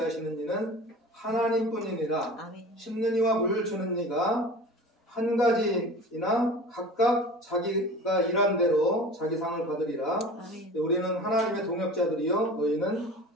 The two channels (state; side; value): normal; both; correlation 0.38